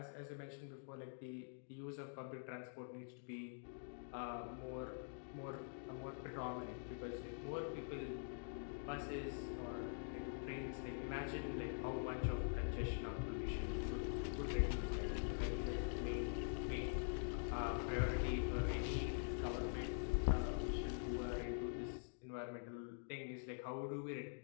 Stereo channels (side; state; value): right; silent; digital silence